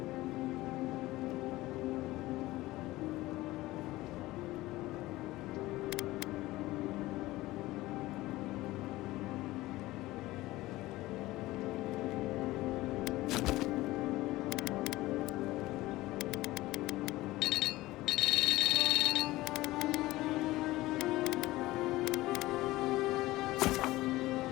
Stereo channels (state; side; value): quieter; right; 18.1 dB